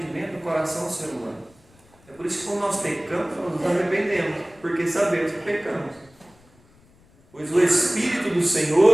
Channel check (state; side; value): noise; left; rumble, 29 dB below the sound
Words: no coração do ser humano. É por isso que quando nós pecamos, nós nos arrependemos, porque sabemos que pecamos. Pois o Espírito do